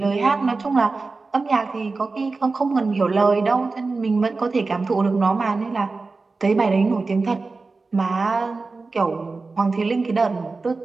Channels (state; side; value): quieter; left; 3.9 dB